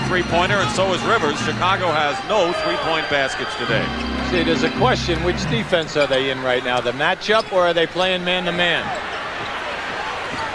and so is Rivers. Chicago has no 3-point baskets today. See, there's a question, which defense are they in right now? The matchup, or are they playing man-to-man?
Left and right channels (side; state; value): both; identical; correlation 1.00